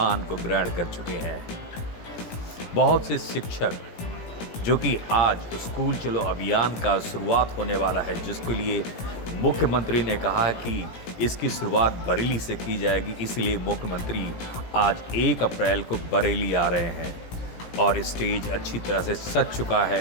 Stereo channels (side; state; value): right; late; 17 ms